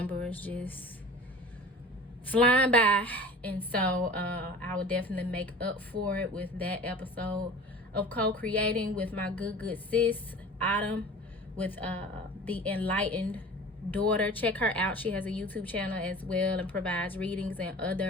is just flying by, and so I will definitely make up for it with that episode of co-creating with my good sis Autumn, with the enlightened daughter. Check her out. She has a YouTube channel as well and provides readings and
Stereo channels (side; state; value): both; normal; correlation 0.40